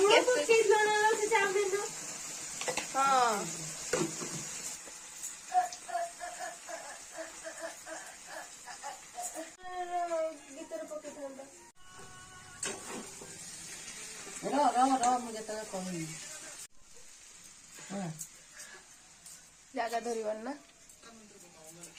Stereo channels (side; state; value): both; identical; correlation 1.00